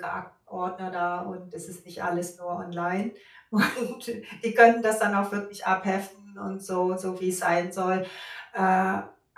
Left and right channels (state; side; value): identical; both; correlation 1.00